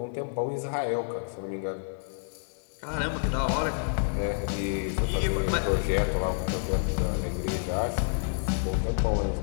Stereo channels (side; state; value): right; silent; 55 dB below the other